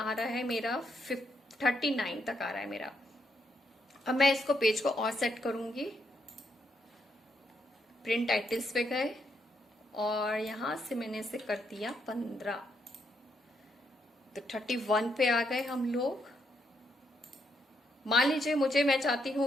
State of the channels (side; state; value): both; normal; correlation 0.78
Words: रहा है मेरा 39 तक आ रहा है मेरा। अब मैं इसको पेज को और सेट करूंगी। प्रिंट टाइटल्स पे गए और यहां से मैंने इसे कर दिया 15, तो 31 पे आ गए हम लोग। मान लीजिए मैं चाहती